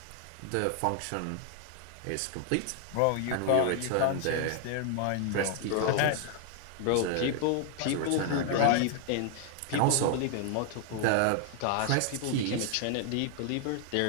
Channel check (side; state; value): both; different; correlation 0.00